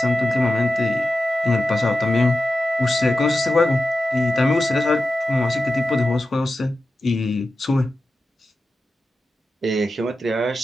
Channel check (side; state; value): both; normal; correlation 0.92